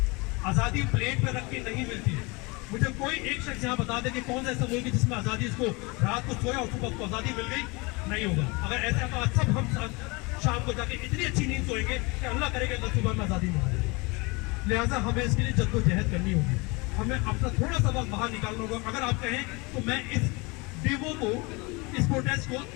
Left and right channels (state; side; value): quieter; right; 26.9 dB